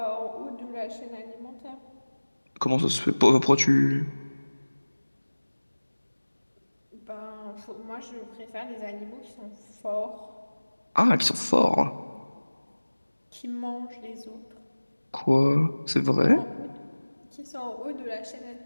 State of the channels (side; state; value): both; inverted; correlation -1.00